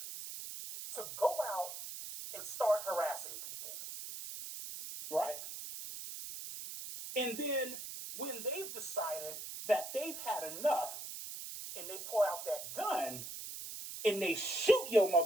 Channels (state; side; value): noise; right; hiss, 8 dB below the sound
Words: to go out and start harassing people? Right? And then when they've decided that they've had enough and they pull out that gun and they shoot your